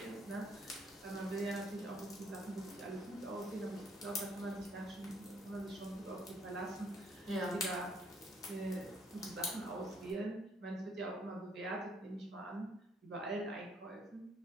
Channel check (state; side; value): normal; both; correlation 0.66